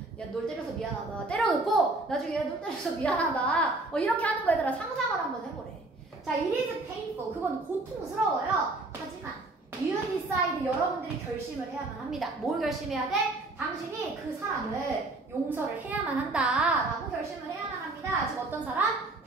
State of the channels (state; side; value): quieter; left; 3.0 dB